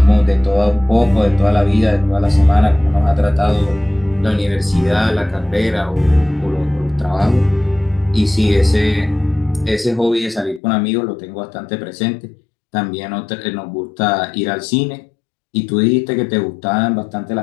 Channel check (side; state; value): right; drops out; at 10.6 s